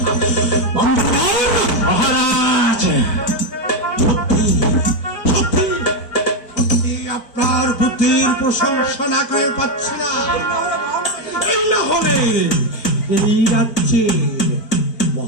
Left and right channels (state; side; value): late; right; 4.5 ms